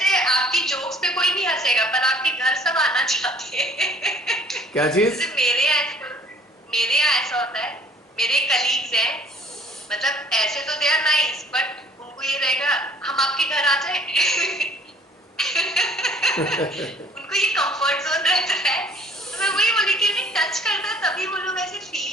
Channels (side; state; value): both; normal; correlation 0.55